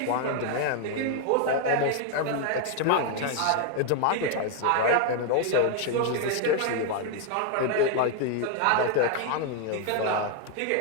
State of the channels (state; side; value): different; both; correlation 0.00